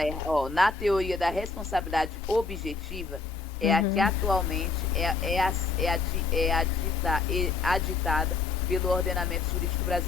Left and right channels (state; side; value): quieter; right; 4.3 dB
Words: errada. Na teoria da responsabilidade objetiva, é a que atualmente aditada pelo ordenamento jurídico